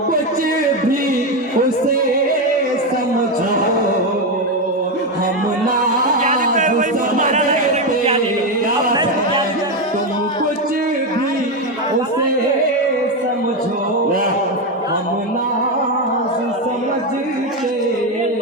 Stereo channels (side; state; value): both; normal; correlation 0.10